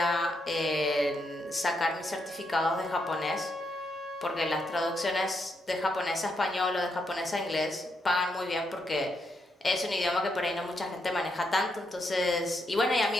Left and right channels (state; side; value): normal; both; correlation 0.80